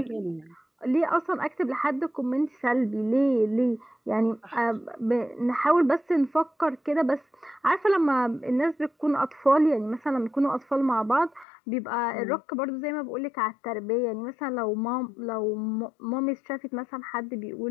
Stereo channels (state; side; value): drops out; right; at 11.5 s